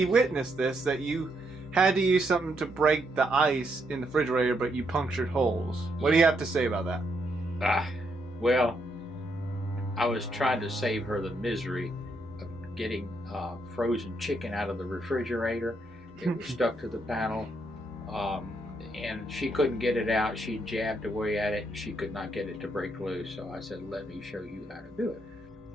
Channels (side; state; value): both; normal; correlation 0.77